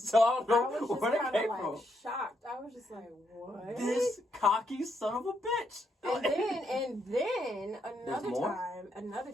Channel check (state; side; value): normal; both; correlation 0.77